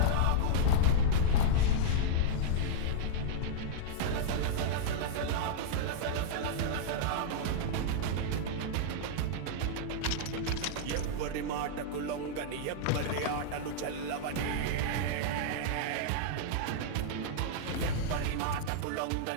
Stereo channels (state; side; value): different; both; correlation -0.02